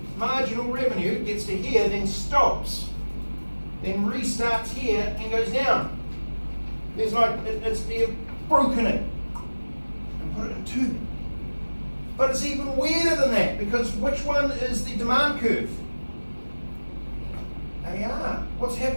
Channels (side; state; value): both; inverted; correlation -1.00